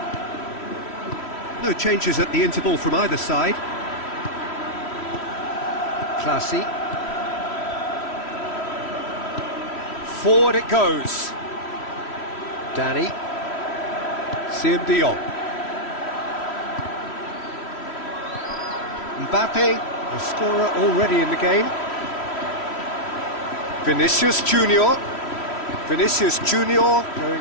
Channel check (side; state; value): right; late; 3.1 ms